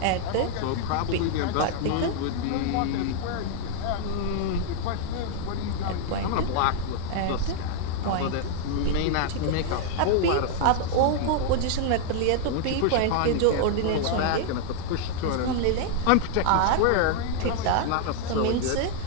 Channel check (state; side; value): different; both; correlation 0.00